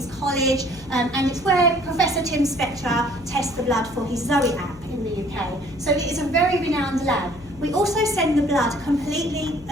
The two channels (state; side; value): noise; left; hum, 19 dB below the sound